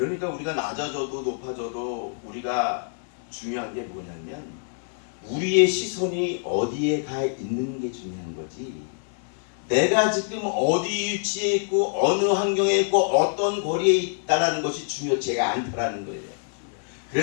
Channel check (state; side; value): silent; right; 61 dB below the other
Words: 우리가 낮아져도 높아져도 우리가 중요한 게 뭐냐면, 우리의 시선이 어디에 가 있는 게 중요한 거지, 내가 지금 어디 위치에 있고 어느 환경에 있고 어떤 거리에 있다는 것이 중요치가 않다라는 거예요.